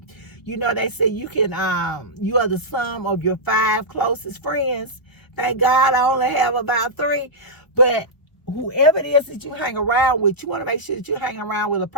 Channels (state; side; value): late; right; 1.2 ms